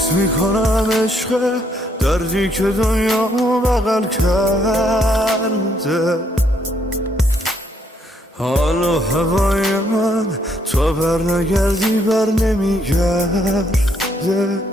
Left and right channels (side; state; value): both; normal; correlation 0.71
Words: میکنم عشق دردی که دنیا بغل کرده. حال و هوای من تو بر نگردی بر نمیگرده.